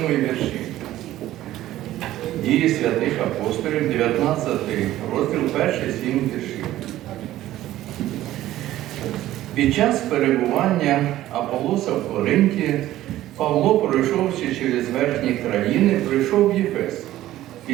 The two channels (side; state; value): left; quieter; 14.4 dB